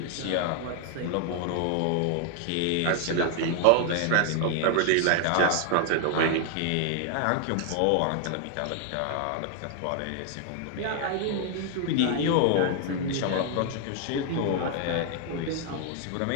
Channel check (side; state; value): both; different; correlation 0.00